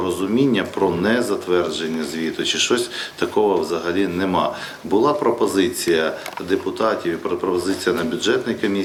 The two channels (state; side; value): identical; both; correlation 1.00